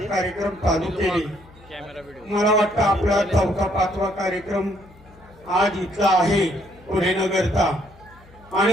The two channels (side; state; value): left; noise; hum, 25 dB below the sound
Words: कार्यक्रम चालू केले मला वाटतं आपला 4था 5वा कार्यक्रम आज इथला आहे पुणेनगरचा